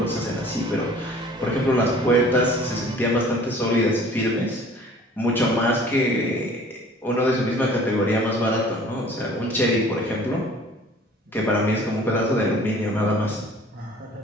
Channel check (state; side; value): normal; both; correlation 0.50